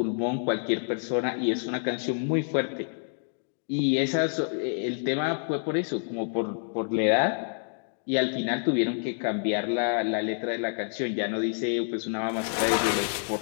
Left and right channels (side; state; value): right; silent; digital silence